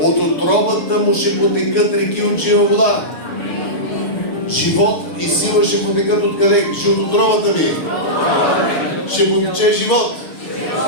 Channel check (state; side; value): late; right; 6.8 ms